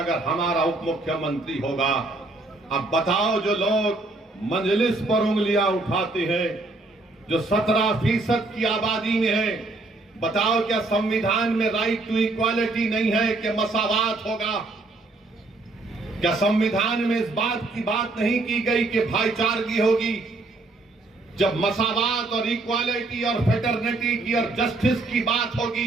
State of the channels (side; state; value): left; quieter; 3.1 dB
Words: हमारा उप मुख्यमंत्री होगा। अब बताओ, जो लोग मजलिस पर उंगलियां उठाते हैं, जो 17% की आबादी में है, बताओ क्या संविधान में राइट टू इक्वालिटी नहीं है कि मसावात होगा? क्या संविधान में इस बात की बात नहीं की गई कि भाईचारगी होगी? जब मसावात और इक्वालिटी और फेटर्निटी की और जस्टिस की बात